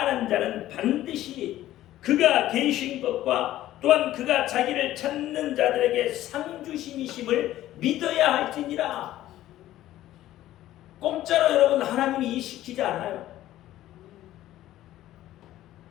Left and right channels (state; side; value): quieter; right; 14.1 dB